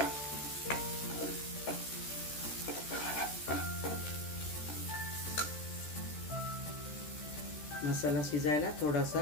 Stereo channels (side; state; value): right; late; 13 ms